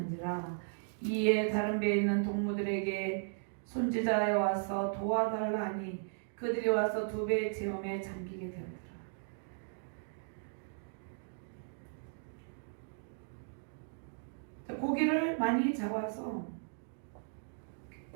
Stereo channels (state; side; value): silent; left; digital silence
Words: 이에 다른 배에 있는 동무들에게 손지자에 와서 도와달라 하니 그들이 와서 두 배의 체험에 잠기게 되었더라. 고기를 많이 잡아서